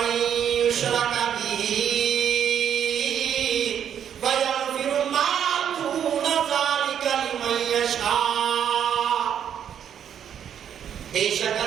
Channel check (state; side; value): quieter; left; 9.0 dB